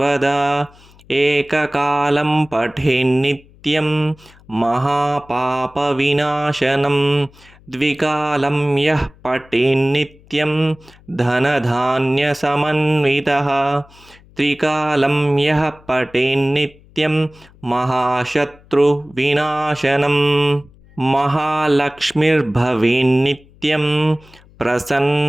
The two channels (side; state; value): left; noise; hum, 26 dB below the sound